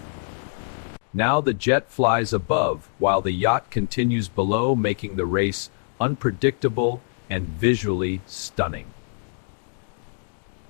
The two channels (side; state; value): right; silent; digital silence